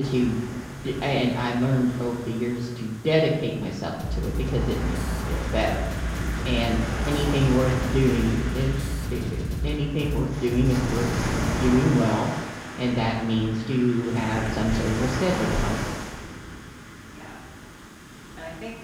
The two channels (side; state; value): both; identical; correlation 1.00